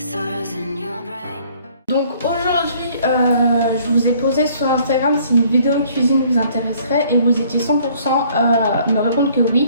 sorrows in your brain. Donc aujourd'hui, je vous ai posé sur Instagram si une vidéo cuisine vous intéresserait et vous étiez 100% à me répondre que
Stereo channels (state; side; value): inverted; both; correlation -0.59